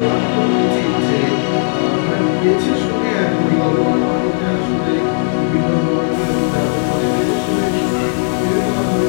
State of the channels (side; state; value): right; silent; 68 dB below the other